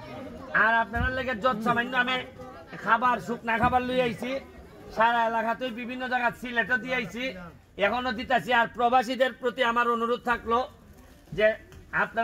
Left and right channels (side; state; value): both; identical; correlation 1.00